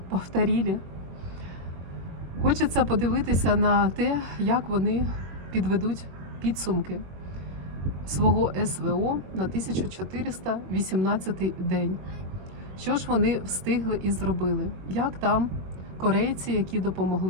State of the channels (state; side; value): late; left; 22 ms